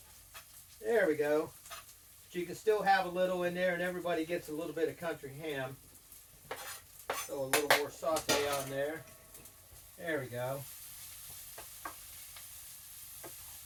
There we go. But you can still have a little in there and everybody gets a little bit of country ham. So a little more saute on there. There we go.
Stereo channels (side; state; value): both; identical; correlation 1.00